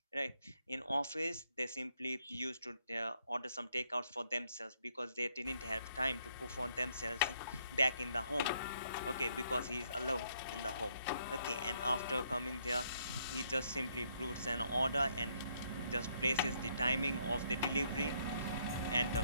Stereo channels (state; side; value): inverted; both; correlation -0.71